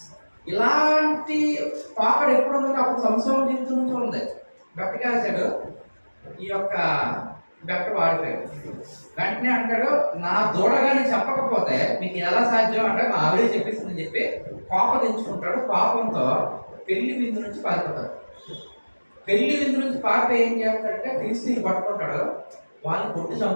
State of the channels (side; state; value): both; inverted; correlation -1.00